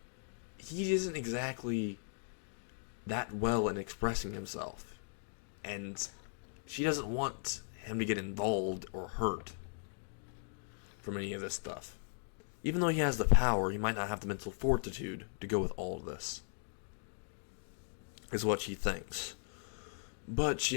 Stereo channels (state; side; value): silent; right; digital silence